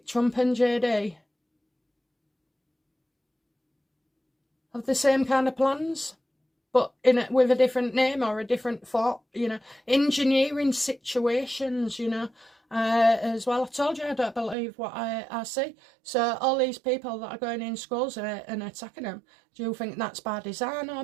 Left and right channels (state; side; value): drops out; left; at 14.6 s